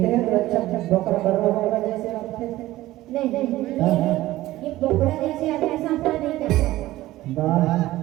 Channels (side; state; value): left; quieter; 16.3 dB